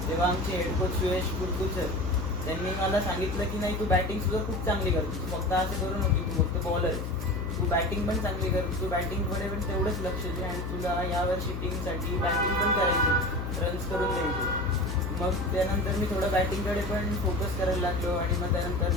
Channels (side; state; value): left; noise; hum, 4 dB below the sound